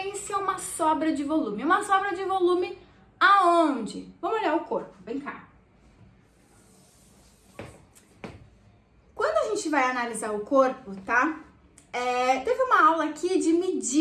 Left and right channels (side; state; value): both; identical; correlation 1.00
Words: é uma sobra de volume. Uma sobra de volume aonde? Vamos olhar o corpo, vem cá. Quando a gente vai analisar o corpo, tá? Teve uma aula aqui de